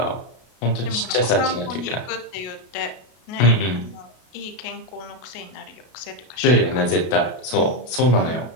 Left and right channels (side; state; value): right; late; 32 ms